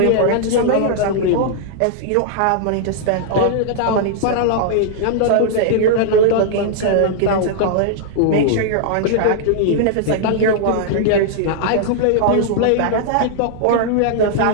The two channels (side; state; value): both; different; correlation -0.01